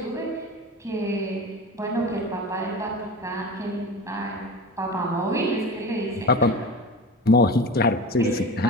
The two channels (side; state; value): both; normal; correlation 0.30